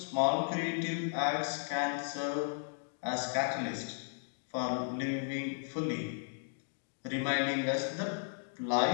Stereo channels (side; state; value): right; silent; digital silence